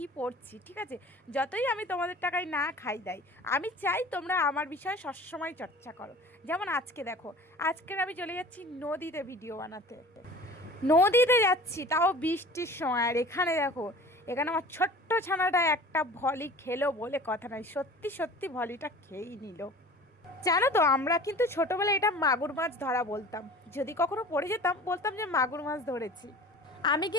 পড়ছি। ঠিক আছে, যতই আমি তোমাদের টাকায় না খাই দেয়, আমি চাই তোমরা আমার বিষয়ে সবসময় চর্চা করো। যেমন আজকে দেখো, আজকের আমি চলে যাচ্ছি নদীতে ভিডিও বানাতে। নদীতে যাচ্ছি, তাও বৃষ্টির সময়। আর এখানে দেখো, এখানে আমার ছোট্ট ছানাটা একটা ভলি খেলো বলে কথা নয়, সত্যি সত্যি ভলিটা খেয়েই নিল। জানো তো, আমরা কিন্তু ছোটবেলায় এটা মাগুর মাছ ধরা বলতাম। যদি কখনো পড়ে যেতাম, বলতাম যে মাগুর মাছ ধরেছি। আমি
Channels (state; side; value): normal; both; correlation 0.42